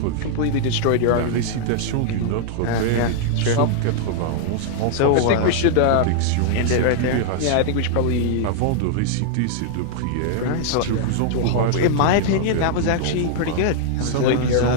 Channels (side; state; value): both; different; correlation -0.01